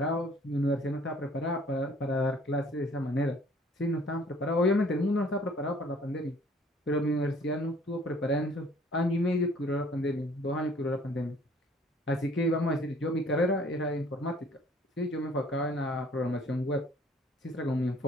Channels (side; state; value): both; normal; correlation 0.56